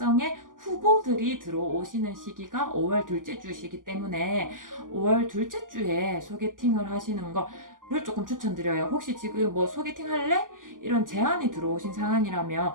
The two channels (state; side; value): late; left; 0.89 ms